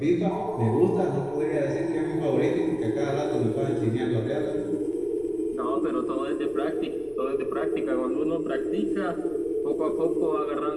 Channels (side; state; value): left; noise; rumble, 23 dB below the sound